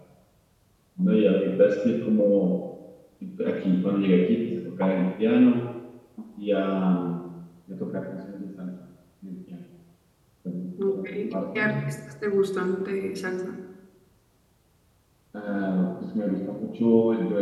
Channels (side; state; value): both; identical; correlation 1.00